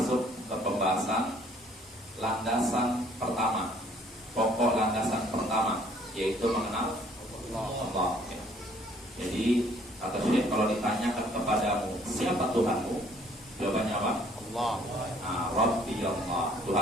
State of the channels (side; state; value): both; normal; correlation 0.60